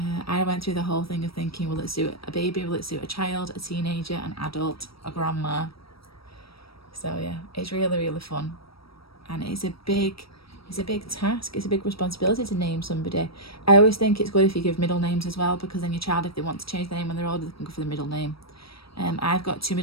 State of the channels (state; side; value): late; right; 0.76 ms